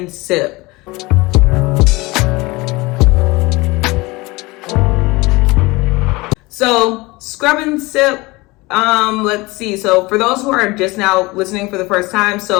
sip. So scrub and sip. Let's see. So for those who are just now listening for the first time,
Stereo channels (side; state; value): right; quieter; 22.9 dB